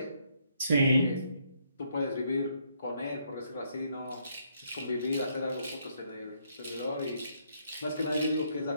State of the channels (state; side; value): inverted; both; correlation -0.72